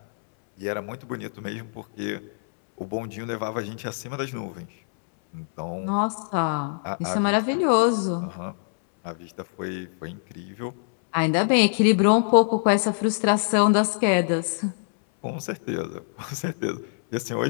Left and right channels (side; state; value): right; silent; 62 dB below the other